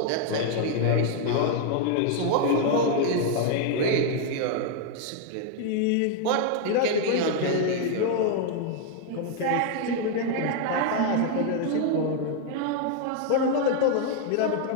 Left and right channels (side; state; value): both; different; correlation 0.00